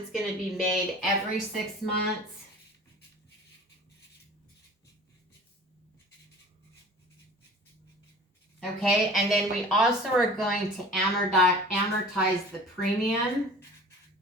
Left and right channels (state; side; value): normal; both; correlation 0.43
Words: going to be made every 6 months. Okay, and then we also are going to amortize the premium.